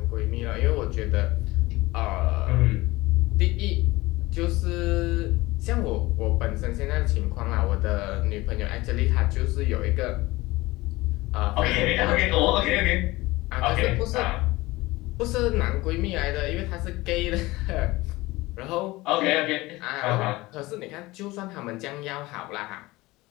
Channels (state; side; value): quieter; right; 20.3 dB